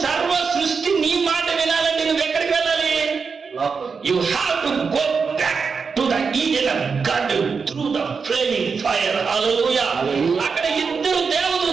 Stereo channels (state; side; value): quieter; left; 5.4 dB